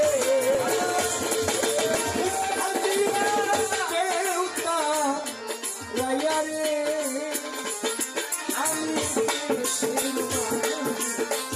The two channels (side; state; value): both; identical; correlation 1.00